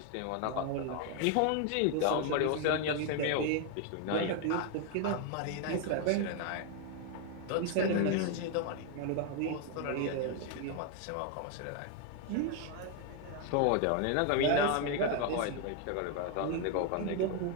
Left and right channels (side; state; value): both; different; correlation 0.01